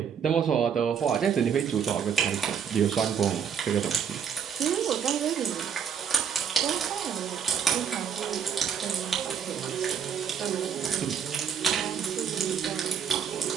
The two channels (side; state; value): left; quieter; 7.6 dB